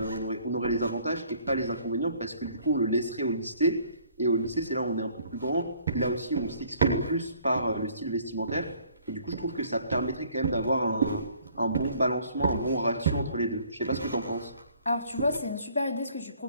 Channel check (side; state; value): both; inverted; correlation -0.59